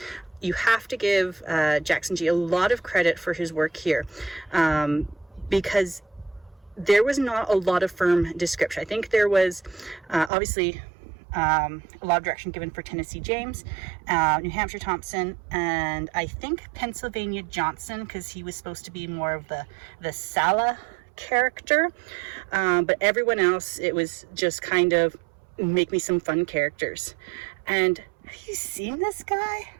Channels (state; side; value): drops out; left; at 10.3 s